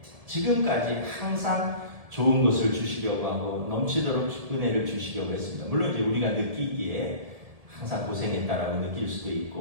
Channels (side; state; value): left; late; 1.7 ms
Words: 지금까지 항상 좋은 것을 주시려고 하고 넘치도록 은혜를 주시려고 했습니다. 물론 이제 우리가 느끼기에 항상 고생했다라고 느낄 수도